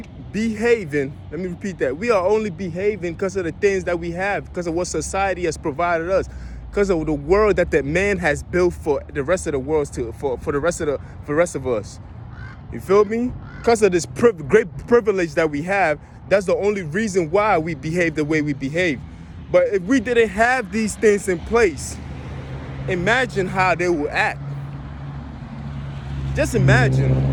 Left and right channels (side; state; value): both; identical; correlation 1.00